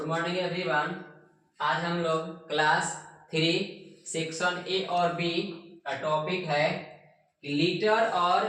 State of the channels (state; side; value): identical; both; correlation 1.00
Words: morning everyone. आज हम लोग क्लास 3 सेक्शन ए और बी का टॉपिक है कि लीटर